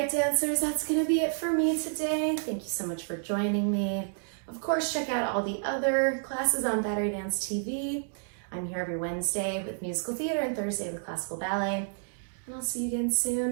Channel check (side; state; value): left; silent; digital silence